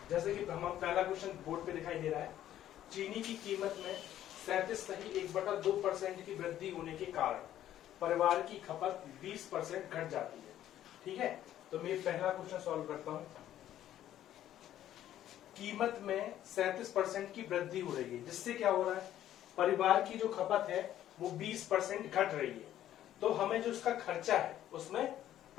जैसे कि हम पहला क्वेश्चन बोर्ड पे दिखाई दे रहा है। चीनी की कीमत में 37.1/2% की वृद्धि होने के कारण परिवार की खपत 20% घट जाती है। ठीक है, तो मैं पहला क्वेश्चन सॉल्व करता हूं। कीमत में 37% की वृद्धि हो रही है, जिससे क्या हो रहा है, परिवार की जो खपत है वो 20% घट रही है। तो हमें जो उसका खर्चा है उसमें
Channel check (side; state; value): right; quieter; 12.1 dB